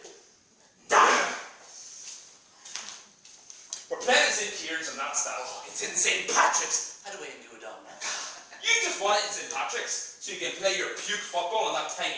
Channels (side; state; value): both; identical; correlation 1.00